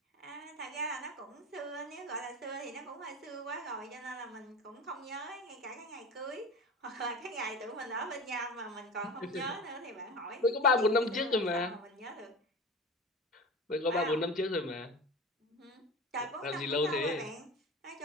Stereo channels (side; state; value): both; normal; correlation 0.32